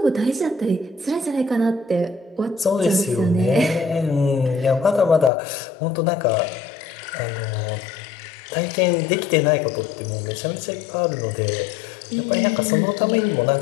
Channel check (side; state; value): right; drops out; at 5.3 s